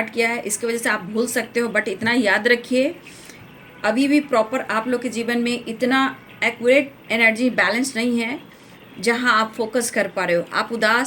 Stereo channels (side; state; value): both; identical; correlation 1.00